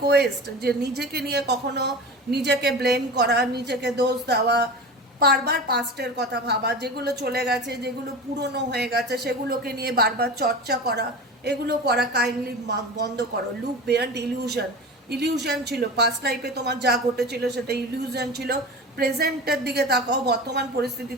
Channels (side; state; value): both; normal; correlation 0.31